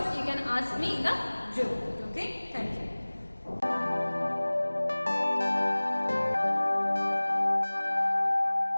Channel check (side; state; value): both; inverted; correlation -1.00